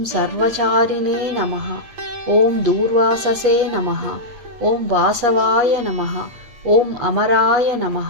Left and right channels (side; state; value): left; late; 8.5 ms